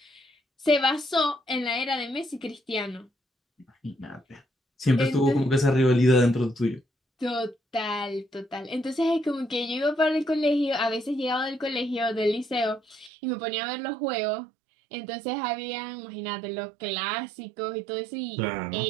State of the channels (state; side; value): drops out; left; at 13.1 s